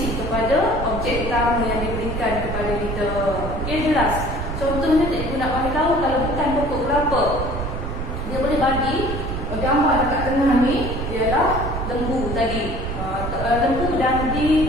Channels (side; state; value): right; noise; rumble, 4 dB below the sound